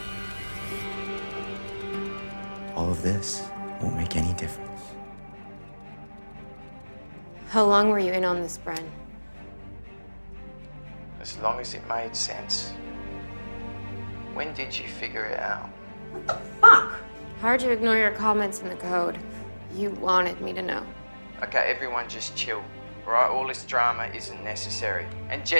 All of this won't make any difference. How long were you in on this, Bren? As long as it made sense. When did you figure it out? Fuck! Hard to ignore your comments in the code. You wanted me to know. Okay, everyone just chill. All right, all this drama isn't necessary. And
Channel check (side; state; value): both; inverted; correlation -1.00